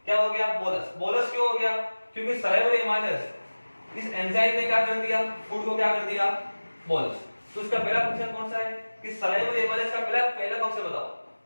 क्या हो गया, बोलस। बोलस क्यों हो गया, क्योंकि सलाइवरी एमाइलेज इस एंजाइम ने क्या कर दिया, फूड को क्या कर दिया, बोलस। तो इसका पहला फंक्शन कौन सा है, कि सलाइवरी एमाइलेज का पहला फंक्शन बताओ।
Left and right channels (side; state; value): both; inverted; correlation -1.00